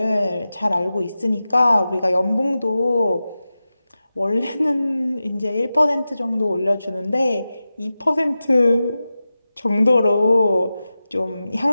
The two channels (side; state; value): both; inverted; correlation -0.94